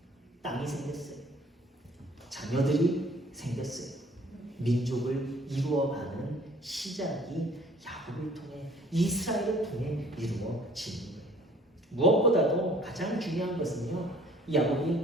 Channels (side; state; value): both; normal; correlation 0.55